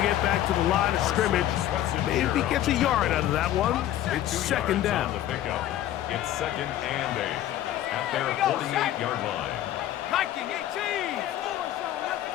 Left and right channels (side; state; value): right; quieter; 12.6 dB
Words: get back to the line of scrimmage. Maybe if he gets a yard out of that one, it's second down. It's second and 8 at their 48-yard line. Viking 18.